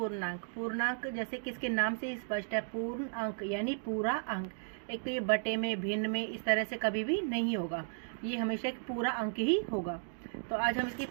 पूर्णांक जैसे कि इसके नाम से ही स्पष्ट है, पूर्ण अंक यानी पूरा अंक। एक तो ये बटे में, भिन्न में इस तरह से कभी भी नहीं होगा, ये हमेशा एक पूरा अंक ही होगा। तो आज हम इसके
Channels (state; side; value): silent; left; digital silence